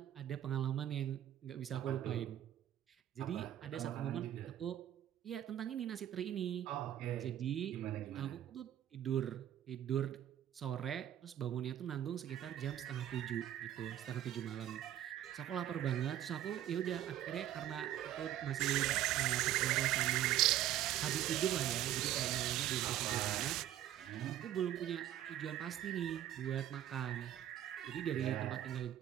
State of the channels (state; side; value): quieter; left; 11.9 dB